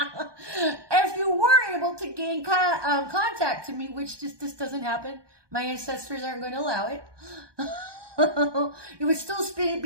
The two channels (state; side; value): late; left; 1.2 ms